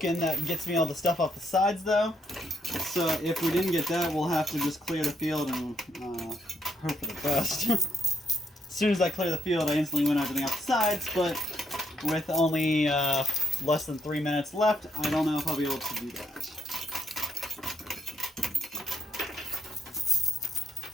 that gets me all the stuff off the sides though. So if we didn't get that, we'll have to just clear the field and hope for the best. As soon as I clear the field, I instantly win everything off the sides, but with only less than 3 minutes left, I don't know if I'll be able to do that.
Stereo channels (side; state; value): both; normal; correlation 0.76